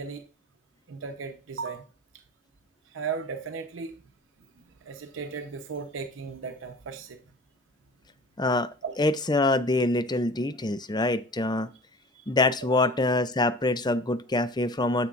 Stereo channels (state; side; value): normal; both; correlation 0.41